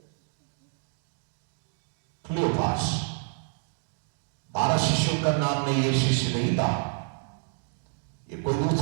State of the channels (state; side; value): silent; left; 59 dB below the other